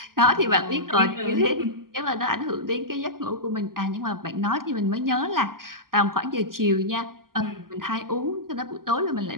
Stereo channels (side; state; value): left; late; 0.91 ms